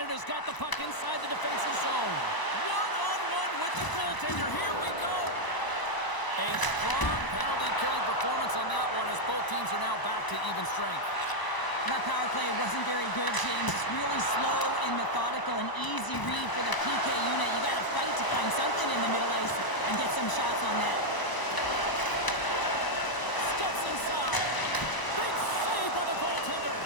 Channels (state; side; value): late; right; 1.0 ms